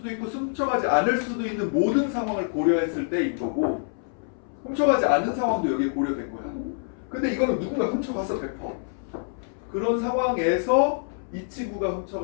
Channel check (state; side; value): silent; right; 61 dB below the other